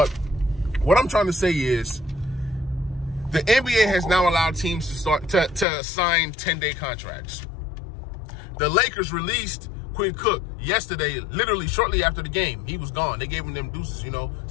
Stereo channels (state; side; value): drops out; right; at 5.7 s